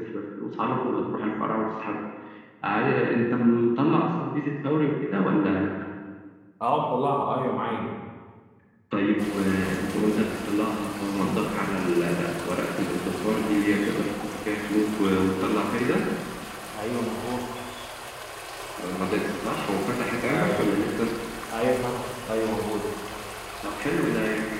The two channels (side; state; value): both; identical; correlation 1.00